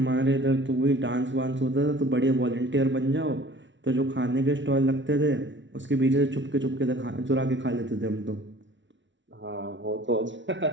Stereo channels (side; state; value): left; late; 0.55 ms